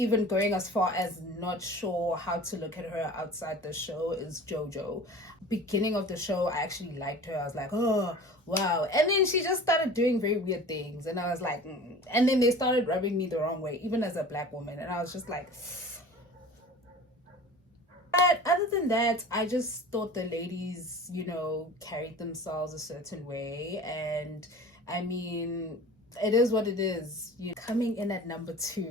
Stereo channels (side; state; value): both; normal; correlation 0.40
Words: going as far as not sure how to look at her outside the show, is JoJo. Beginning of the show, I actually liked her. I was like, oh wow. And then she just started doing very weird things, and I was like, and then they started rubbing me the wrong way, even as a black woman, and I was just like. But other than that, I just thought the ladies, carried themselves a certain way. And I mean, it is what it is. Coming in at number